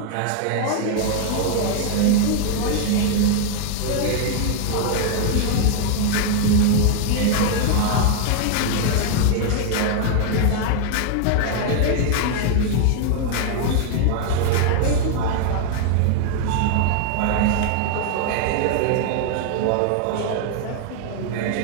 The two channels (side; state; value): both; different; correlation 0.00